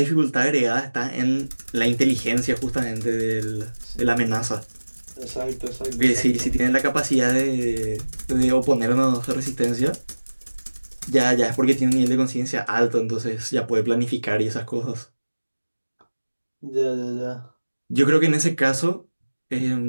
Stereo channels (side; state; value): both; inverted; correlation -1.00